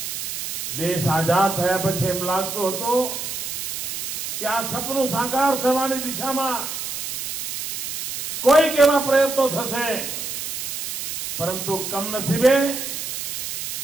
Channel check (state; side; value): noise; right; hiss, 6 dB below the sound